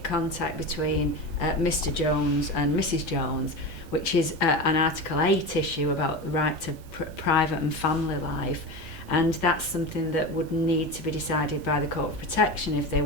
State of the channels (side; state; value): both; normal; correlation 0.25